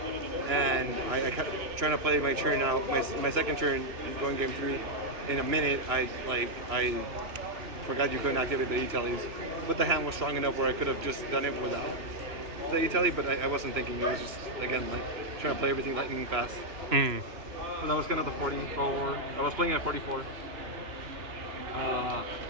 and I kept trying to play my turn out, my second turn going game 3. In a minute, I forgot you couldn't activate the E-tellys, but the hand was strong enough where I could have just done it without the E-telly, but I wasn't thinking. It was just, again, like trying to play everything lightning fast. So that was kind of the 44. I was playing at 44.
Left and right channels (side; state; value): left; late; 2.9 ms